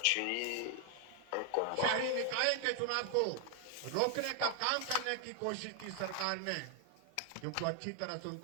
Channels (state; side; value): different; both; correlation 0.00